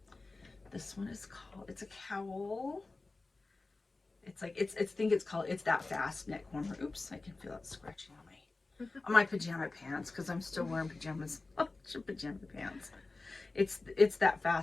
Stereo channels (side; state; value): right; quieter; 3.5 dB